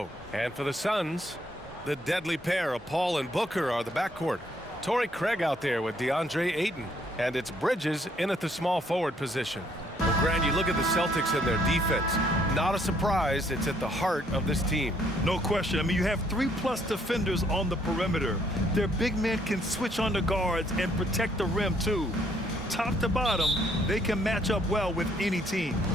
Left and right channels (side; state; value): both; normal; correlation 0.67